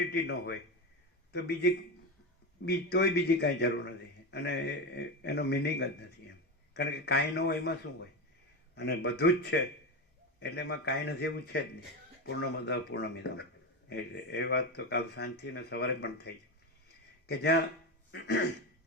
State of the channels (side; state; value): both; normal; correlation 0.18